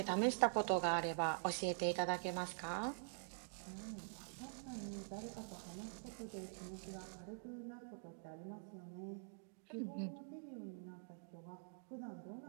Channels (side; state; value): left; silent; digital silence